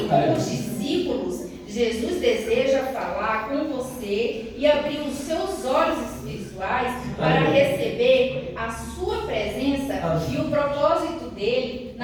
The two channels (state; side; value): identical; both; correlation 1.00